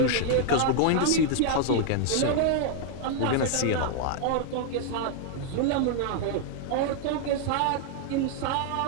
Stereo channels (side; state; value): both; different; correlation 0.00